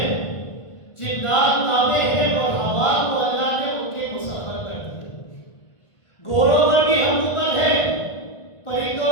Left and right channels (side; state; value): right; late; 1.5 ms